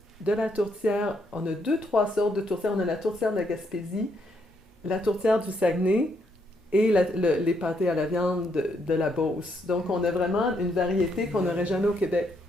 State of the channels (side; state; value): both; normal; correlation 0.75